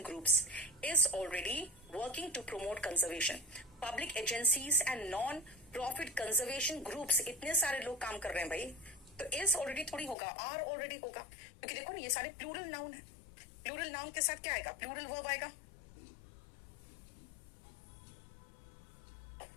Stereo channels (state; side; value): drops out; right; at 10.2 s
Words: groups is already working to promote conservation. Public agencies and non-profit conservation groups, इतने सारे लोग काम कर रहे हैं भाई, तो is already थोड़ी होगा, are already होगा, क्योंकि देखो ना ये सारे प्लूरल नाउन है. प्लूरल नाउन के साथ क्या आएगा? प्लूरल वर्ब आएगा.